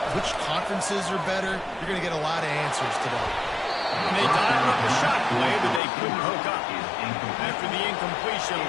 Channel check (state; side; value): drops out; right; at 5.8 s